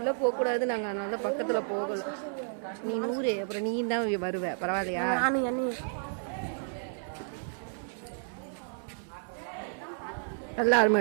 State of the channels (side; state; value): left; silent; 57 dB below the other